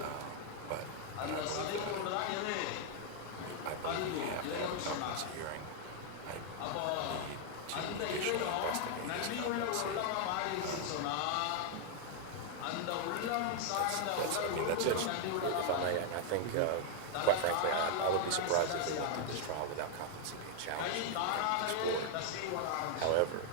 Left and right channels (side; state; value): both; different; correlation 0.00